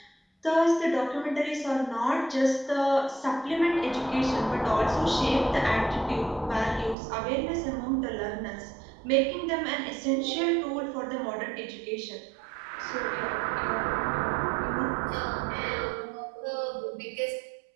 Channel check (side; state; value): left; drops out; at 7.0 s